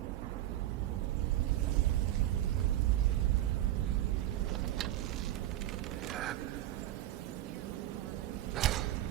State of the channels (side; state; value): left; quieter; 13.8 dB